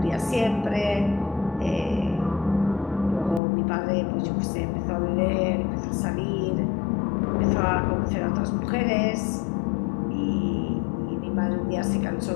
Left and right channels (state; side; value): drops out; right; at 3.4 s